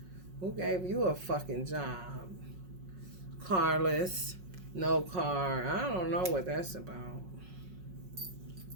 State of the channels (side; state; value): left; late; 5.4 ms